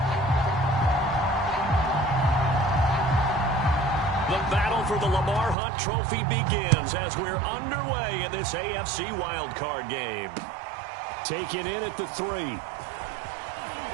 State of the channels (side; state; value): left; drops out; at 5.6 s